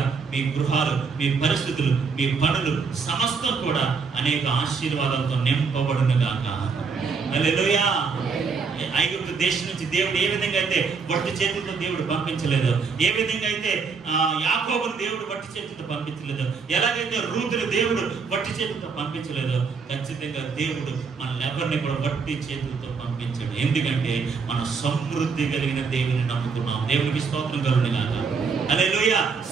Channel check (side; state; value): left; quieter; 5.2 dB